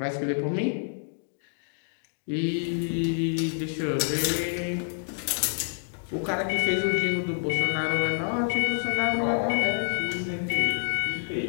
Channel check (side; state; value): right; silent; digital silence